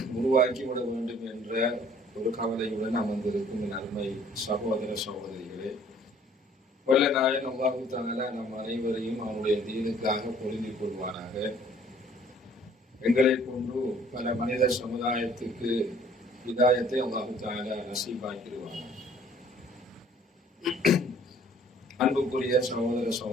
உருவாக்கிவிட வேண்டும் என்ற ஒரு கவலையுடன் அமர்ந்திருக்கும் என் அருமை சகோதர சகோதரிகளே, வல்ல நாயன் அல்லாஹு தஆலா நம் அனைவரையும் அவனுடைய தீனுக்காக பொருந்திக் கொள்வானாக. எங்களை கொண்டு பல மனித சமுதாயத்துக்கு ஹிதாயத்தை அல்லாஹு தஆலா நசீபாக்கிடுவானாக. அன்புக்குரிய சகோதர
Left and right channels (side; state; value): both; normal; correlation 0.57